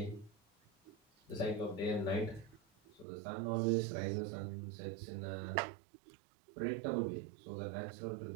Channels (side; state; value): left; drops out; at 3.1 s